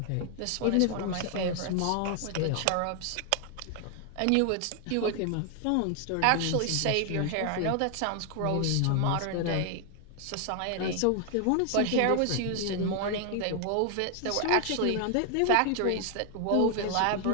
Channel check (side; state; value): both; different; correlation 0.00